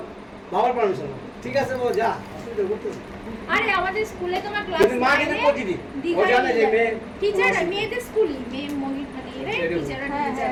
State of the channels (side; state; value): both; identical; correlation 1.00